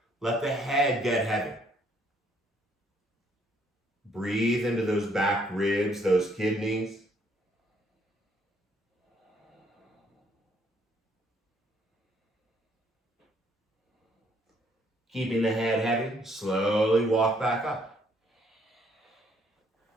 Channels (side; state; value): both; normal; correlation 0.67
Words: let the head get heavy. Breathe into those back ribs, those kidneys. Keeping the head heavy, slowly walk back up.